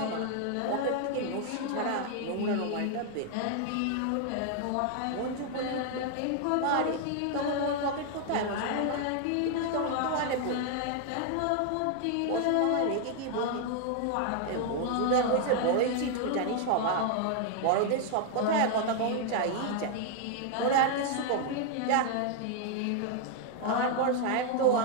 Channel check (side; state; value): both; different; correlation 0.00